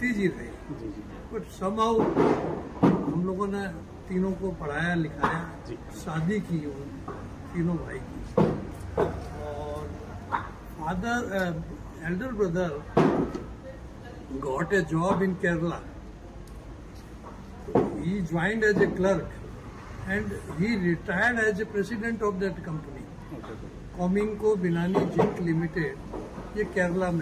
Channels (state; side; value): identical; both; correlation 1.00